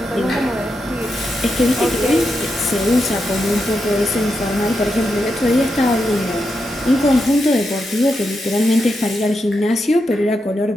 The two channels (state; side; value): normal; both; correlation 0.85